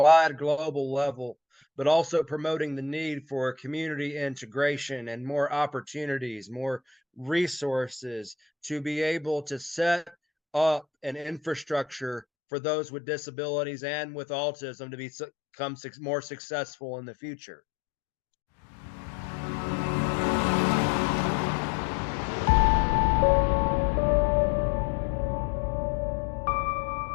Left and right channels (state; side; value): drops out; right; at 12.2 s